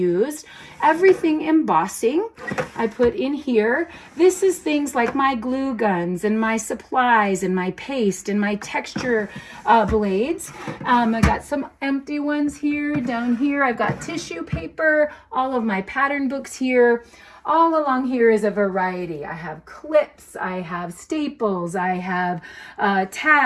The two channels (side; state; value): both; identical; correlation 1.00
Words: Everything embossing I put in here. This is things like my glue guns and my supplies and my paste and my texture blades. I got some empty ones here. Down here I've got tissue paper, all of my pattern books here. All along here is a variety. I have clips, I have staples, I have